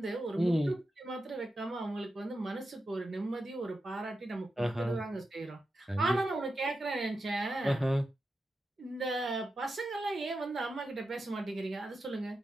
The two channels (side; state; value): both; normal; correlation 0.89